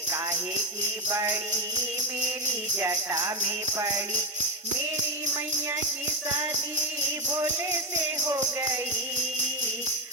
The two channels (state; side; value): normal; both; correlation 0.11